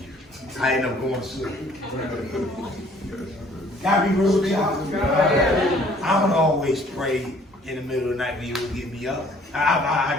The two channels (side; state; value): both; normal; correlation 0.57